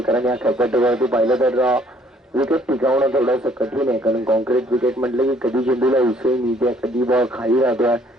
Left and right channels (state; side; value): normal; both; correlation 0.62